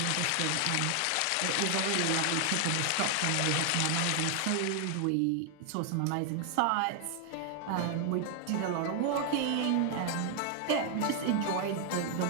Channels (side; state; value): both; different; correlation 0.00